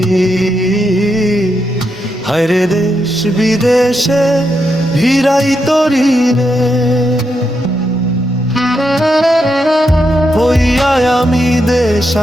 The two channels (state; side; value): normal; both; correlation 0.83